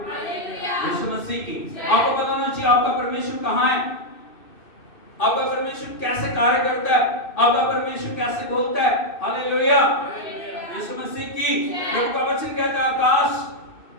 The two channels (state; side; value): late; right; 2.6 ms